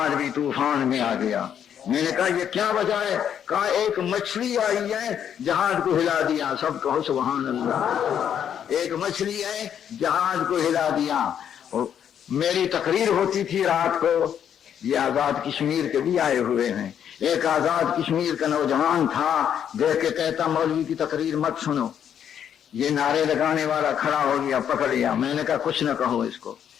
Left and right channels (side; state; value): right; quieter; 8.9 dB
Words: بھی طوفان میں آ گیا۔ میں نے کہا یہ کیا وجہ ہے؟ کہا ایک مچھلی آئی ہے جہاز کو ہلا دیا۔ سب کہو سبحان اللہ۔ ایک مچھلی ہے جہاز کو ہلا دیا۔ میری تقریر ہوتی تھی رات کو، یہ آزاد کشمیر کے بھی آئے ہوئے ہیں، ایک آزاد کشمیر کا نوجوان تھا، دیکھ کے کہتا مولوی کی تقریر مت سنو۔ یہ نعرے لگانے والا کھڑا ہو گیا، پکڑ لیا۔ میں نے کہا کچھ نہ کہو اس کو۔